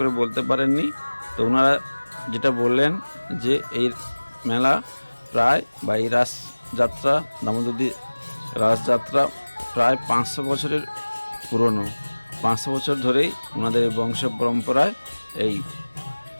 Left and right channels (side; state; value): both; inverted; correlation -1.00